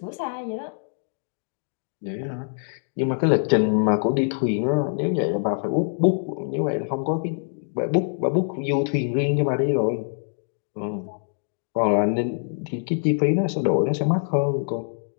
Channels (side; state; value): right; silent; digital silence